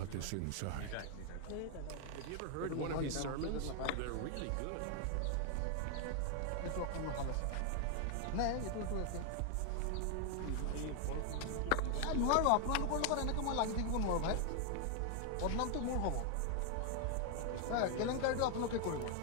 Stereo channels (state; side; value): different; both; correlation 0.00